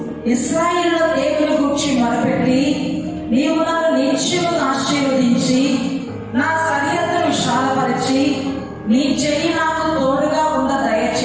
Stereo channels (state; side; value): identical; both; correlation 1.00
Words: ఇశ్రాయేలు దేవుని గురించి మొరపెట్టి, నీవు నన్ను నిత్యము ఆశీర్వదించి నా సరిహద్దును విశాలపరిచి నీ చెయ్యి నాకు తోడుగా ఉండ